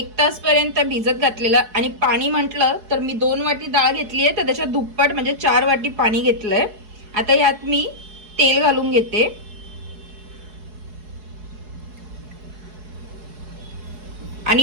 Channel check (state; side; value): late; left; 4.7 ms